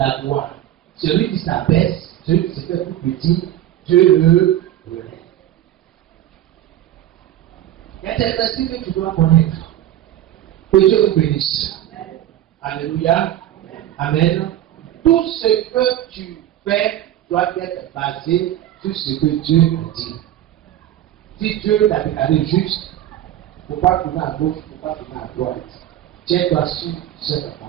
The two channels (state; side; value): quieter; left; 12.3 dB